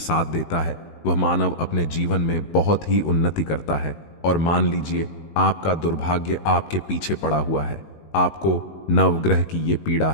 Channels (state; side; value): late; right; 19 ms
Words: देता है, वह मानव अपने जीवन में बहुत ही उन्नति करता है। और मान लीजिए आपका दुर्भाग्य आपके पीछे पड़ा हुआ है, आपको नवग्रह की ये पीड़ा